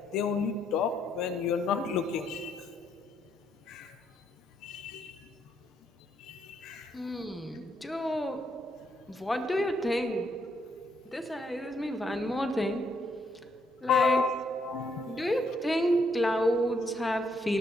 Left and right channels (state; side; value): normal; both; correlation 0.75